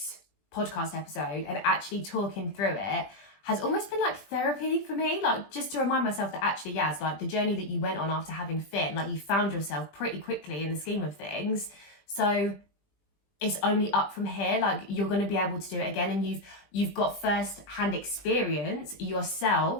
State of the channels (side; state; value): right; late; 20 ms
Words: podcast episode and actually talking through it has almost been like therapy for me, like just to remind myself that actually, Yaz, like the journey that you went on after having Finn, like you found yourself pretty quickly in the scheme of things. So it's only up from here. Like you're going to be able to do it again, and you've got first-hand experience